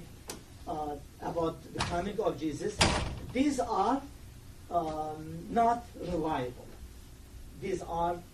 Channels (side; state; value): both; identical; correlation 1.00